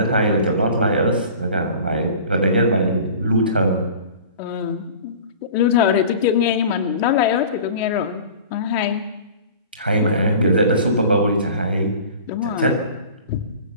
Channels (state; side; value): inverted; both; correlation -0.41